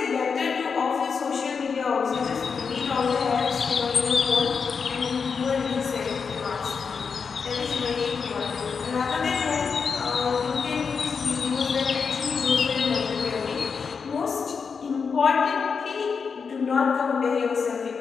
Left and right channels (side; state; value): right; quieter; 5.7 dB